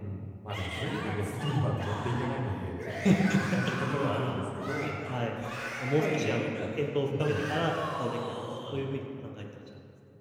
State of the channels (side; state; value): both; identical; correlation 1.00